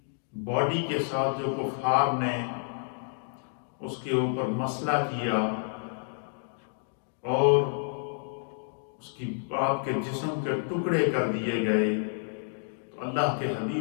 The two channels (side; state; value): right; silent; digital silence